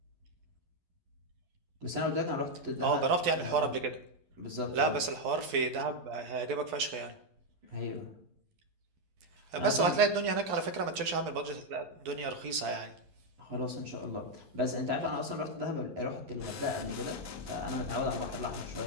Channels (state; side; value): late; left; 12 ms